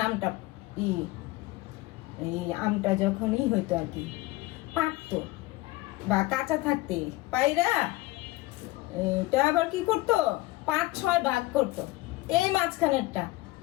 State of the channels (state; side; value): quieter; right; 19.6 dB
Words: আমটা যখনই হইতো আর কি, পাকতো বা কাঁচা থাকতে পাইরা এটা আবার কি করতো, 5-6 ভাগ করতো। এই মাঝখানেরটা